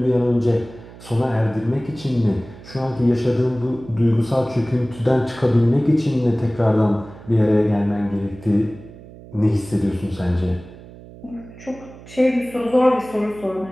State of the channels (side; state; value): right; noise; hum, 18 dB below the sound